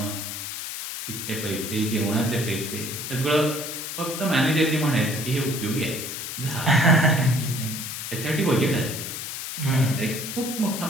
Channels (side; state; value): left; noise; hiss, 6 dB below the sound